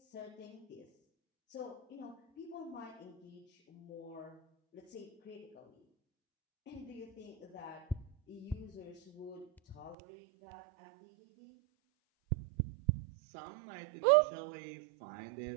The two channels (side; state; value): left; drops out; at 10.0 s